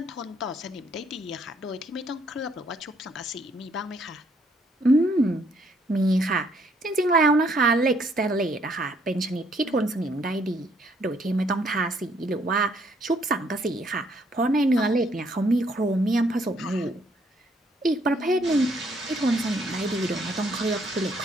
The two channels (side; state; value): both; normal; correlation 0.68